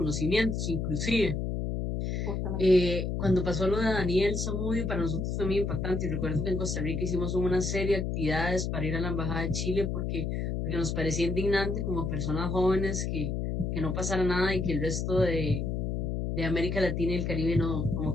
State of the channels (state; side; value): noise; left; hum, 1 dB below the sound